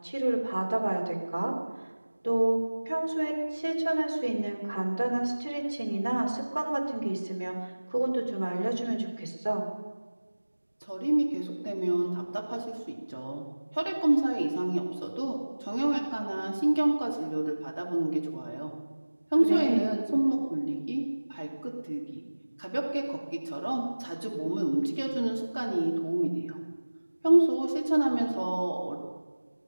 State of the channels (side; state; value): both; inverted; correlation -1.00